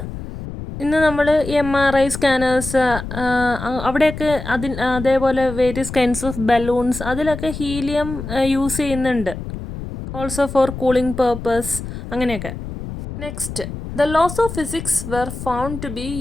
ഇന്ന് നമ്മൾ MRI സ്കാനേഴ്സ് അവിടെയൊക്കെ അതേപോലെ വേരിയസ് കൈൻഡ്സ് ഓഫ് ബലൂൺസ് അതിലൊക്കെ ഹീലിയം യൂസ് ചെയ്യുന്നുണ്ട്. ഓൾസോ ഫോർ കൂളിംഗ് പേർപ്പസ് അങ്ങനെയൊക്കെ. Next, the laws of physics were found to be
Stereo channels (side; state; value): left; noise; rumble, 9 dB below the sound